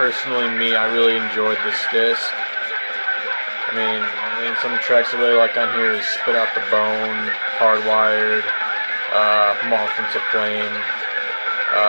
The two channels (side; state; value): both; inverted; correlation -1.00